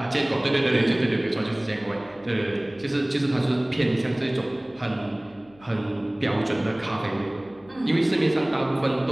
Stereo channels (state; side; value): noise; left; hum, 27 dB below the sound